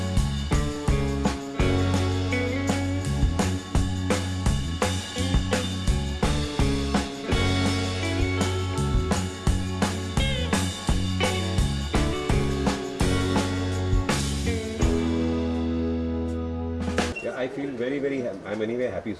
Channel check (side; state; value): both; identical; correlation 1.00